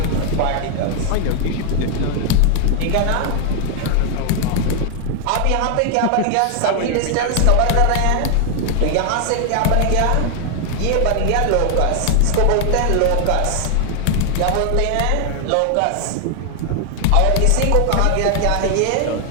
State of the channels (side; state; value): both; different; correlation 0.00